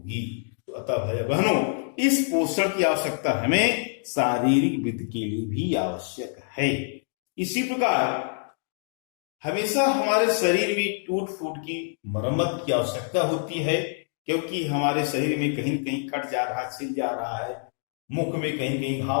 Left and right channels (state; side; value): silent; right; 61 dB below the other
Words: तो अतः भाई बहनों, इस पोषण की आवश्यकता हमें शारीरिक वृद्धि के लिए भी आवश्यक है। इसी प्रकार हमेशा हमारे शरीर में टूट फूट की मरम्मत की आवश्यकता होती है, क्योंकि हमारे शरीर में कहीं कहीं कट जा रहा है, छिल जा रहा है, मुख में कहीं कहीं